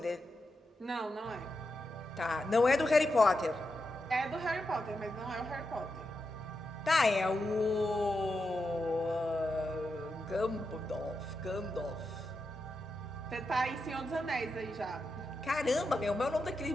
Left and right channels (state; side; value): normal; both; correlation 0.87